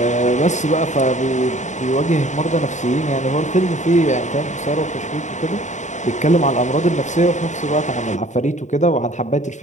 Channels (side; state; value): right; late; 0.35 ms